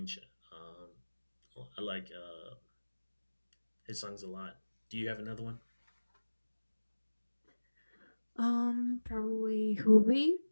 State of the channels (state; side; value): inverted; both; correlation -1.00